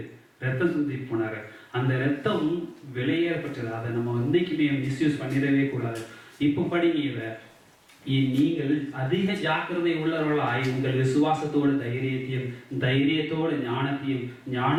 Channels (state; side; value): identical; both; correlation 1.00